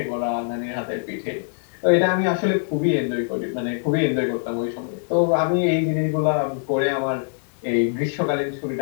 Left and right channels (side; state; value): right; silent; digital silence